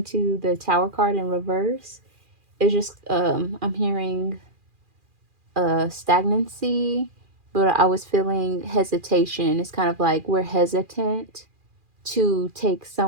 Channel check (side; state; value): left; late; 2.4 ms